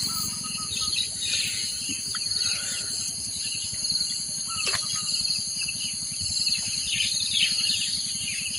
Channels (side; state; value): both; normal; correlation 0.95